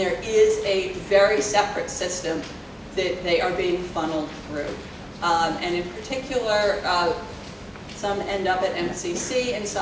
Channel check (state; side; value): identical; both; correlation 1.00